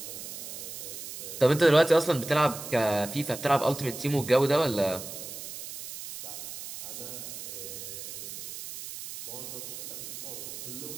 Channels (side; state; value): right; noise; hiss, 9 dB below the sound